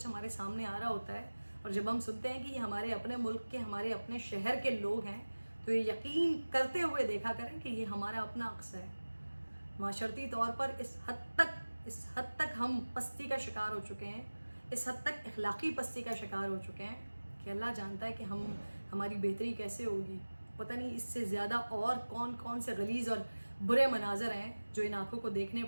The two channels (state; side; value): inverted; both; correlation -1.00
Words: ہمارے سامنے آ رہا ہوتا ہے, اور جب ہم سنتے ہیں کہ یہ ہمارے اپنے ملک کے, ہمارے اپنے شہر کے لوگ ہیں, تو یہ یقین کرتے ہوئے دیکھا کریں کہ یہ ہمارا اپنا عکس ہے. معاشرتی طور پر اس حد تک ہم پستی کا شکار ہو چکے ہیں, اس حد تک اخلاقی پستی کا شکار ہو چکے ہیں کہ اللہ جانتا ہے کہ ہماری بہتری کیسے ہوگی. پتہ نہیں اس سے زیادہ اور کون سے غلیظ اور برے مناظر ہیں جو ان آنکھوں کو دیکھنے